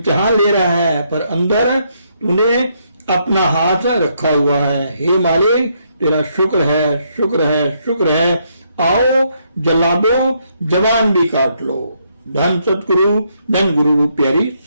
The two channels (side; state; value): both; inverted; correlation -0.74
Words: ले रहा है पर अंदर तूने अपना हाथ रखा हुआ है। हे मालिक, तेरा शुक्र है, शुक्र है, शुक्र है। आओ जला दो, जबान भी काट लो। धन सतगुरु, धन गुरु प्यारी